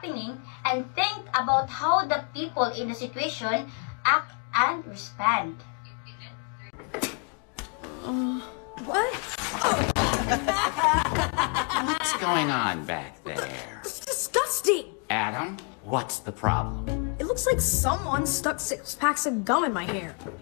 and think about how the people in the situation act and respond. What? What's going on back there? It's disgusting! Adam, what's the problem? It looks like someone stuck 6 packs of gum in my hair.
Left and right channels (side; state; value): right; quieter; 37.7 dB